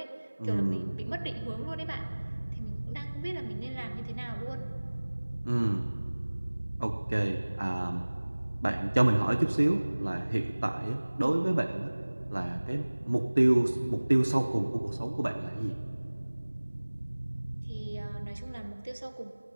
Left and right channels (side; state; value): both; inverted; correlation -1.00